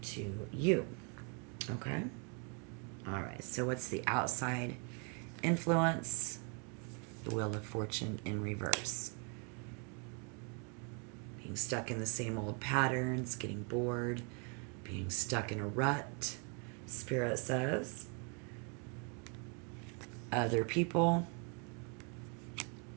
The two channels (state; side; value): quieter; left; 36.5 dB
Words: to you. Okay? All right. So what's the outside influence? The Wheel of Fortune in reverse. Being stuck in the same old patterns, getting bored, being stuck in a rut, Spirit says. Other people,